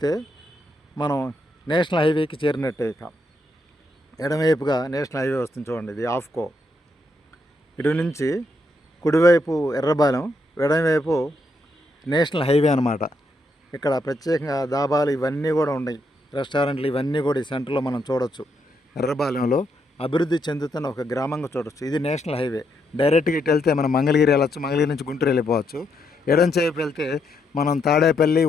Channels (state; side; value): normal; both; correlation 0.78